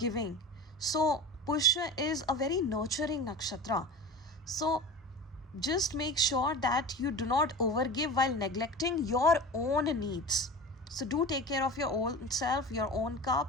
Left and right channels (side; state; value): both; normal; correlation 0.31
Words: So Pushya is a very nurturing nakshatra. So just make sure that you do not overgive while neglecting your own needs. So do take care of your own self, your own